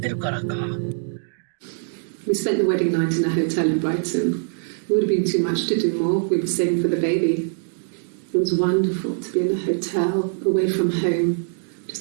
るからか。We spent the wedding night in a hotel in Brighton. It would have been too much to do more. We were saving for the baby. It was wonderful to be in a hotel, away from home,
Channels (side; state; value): left; silent; digital silence